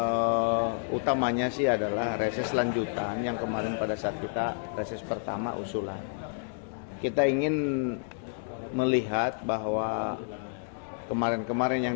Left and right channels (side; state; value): right; silent; 58 dB below the other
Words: utamanya sih adalah reses lanjutan yang kemarin pada saat kita reses pertama usulan. Kita ingin melihat bahwa kemarin-kemarin